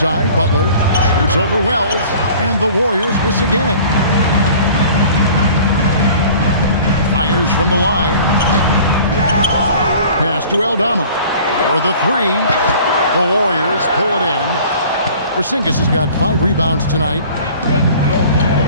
Butler shoots over Wells, and the Warriors miss again. Fires from the line. Pass to Aldama for the 3. The Warriors pull it in. Porzingis has got 5 rebounds tonight.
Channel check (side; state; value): both; inverted; correlation -0.47